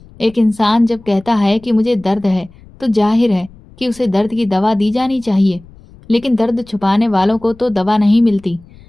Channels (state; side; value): noise; left; rumble, 24 dB below the sound